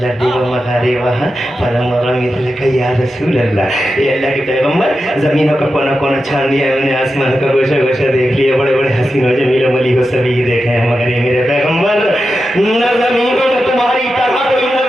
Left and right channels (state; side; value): normal; both; correlation 0.90